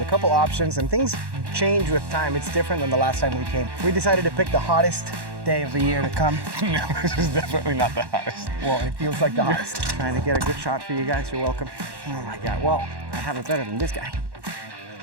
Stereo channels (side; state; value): left; late; 1.1 ms